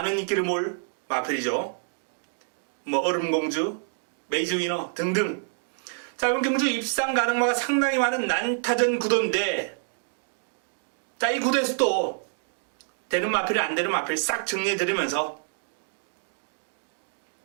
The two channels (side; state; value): left; silent; digital silence